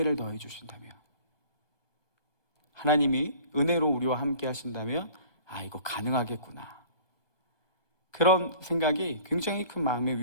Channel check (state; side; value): late; right; 1.2 ms